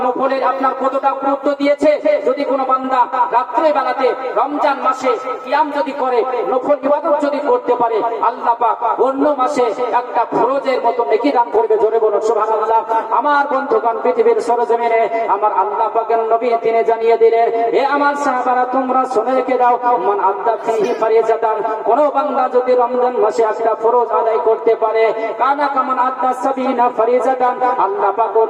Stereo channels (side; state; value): both; identical; correlation 1.00